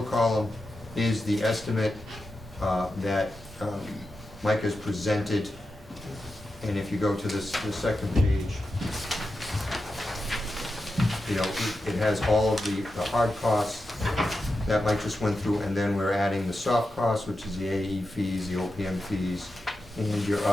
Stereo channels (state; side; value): normal; both; correlation 0.90